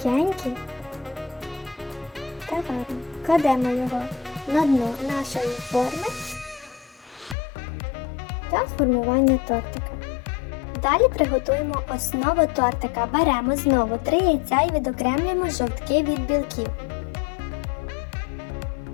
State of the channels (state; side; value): drops out; right; at 7.4 s